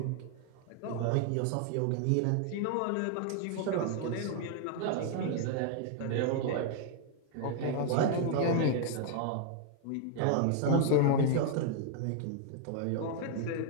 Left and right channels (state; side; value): different; both; correlation 0.00